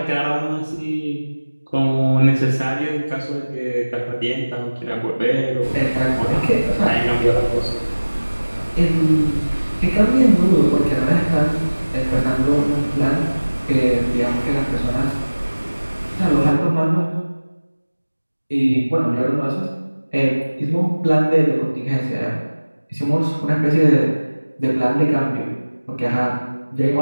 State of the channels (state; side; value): inverted; both; correlation -1.00